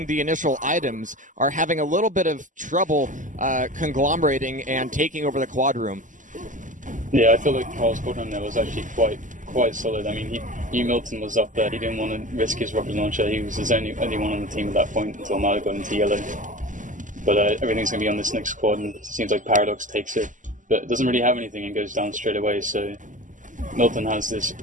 the initial items, are having a little bit of trouble conglomerating and taking over the quad room. Yeah, I feel like Carl's quad room there was actually quite solid. I mean, he knew Milton was up there. He didn't want to risk his rocket launcher. He was his only one on the team at that point until Milo got into yellow. But everything's going to be on this next quad, and it seems like Paradoks takes it. but it doesn't really have anything and goes down straight away. So Milton has this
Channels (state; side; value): late; left; 0.37 ms